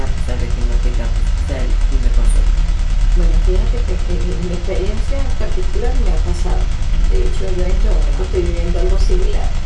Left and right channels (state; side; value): identical; both; correlation 1.00